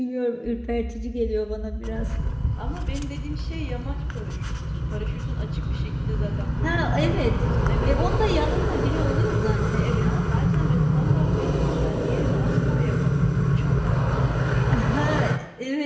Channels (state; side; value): identical; both; correlation 1.00